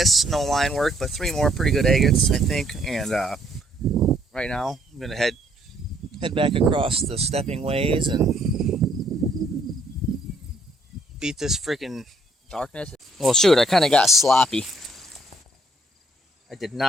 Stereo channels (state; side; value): normal; both; correlation 0.66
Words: no line work, but 3 more pretty good agates, I think. And right now, I'm gonna head back across the stepping ways and beat this freaking darkness. Well, shoot, I kind of got sloppy. I did